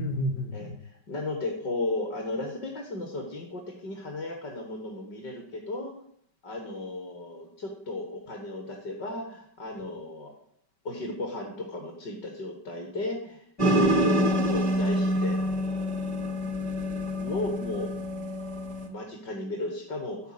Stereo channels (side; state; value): right; late; 5.2 ms